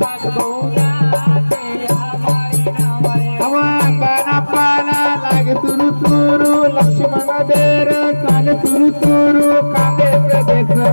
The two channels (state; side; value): inverted; both; correlation -1.00